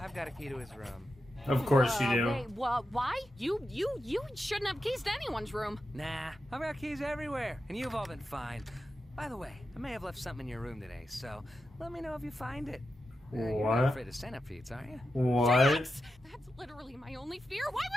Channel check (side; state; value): both; normal; correlation 0.89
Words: got a key to his room. Of course you do. Wait, why? You shouldn't have keys to anyone's room. Nah, I've got keys everywhere, and you've all been fine. By the way, I may have left something in your room today, so let me know if you find it. You're What? not afraid of centipedes, are you? What? Jax! That's literally my only fear. Why